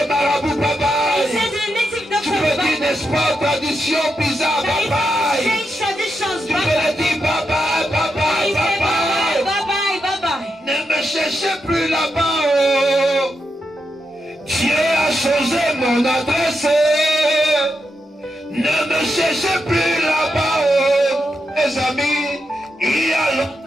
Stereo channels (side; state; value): both; normal; correlation 0.85